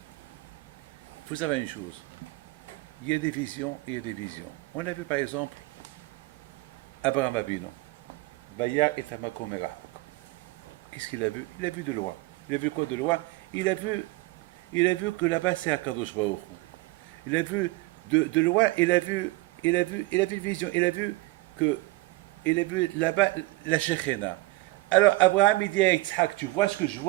il faut savoir une chose. Il y a des visions et il y a des visions. On a vu par exemple Abraham Avinu. Vaya et Amakom Erachok. Qu'est-ce qu'il a vu? Il a vu de loin. Il a vu quoi de loin? Il a vu Il a vu que là-bas c'est Akadosh Baruch Hu. Il a vu de loin, il a vu une vision, il a vu là-bas la Shekhina. Alors Abraham il dit à Yitzhak, tu vois ce que je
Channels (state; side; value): quieter; left; 20.8 dB